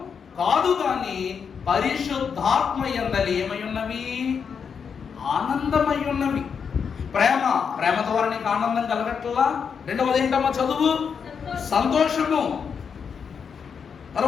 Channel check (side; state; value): right; quieter; 6.5 dB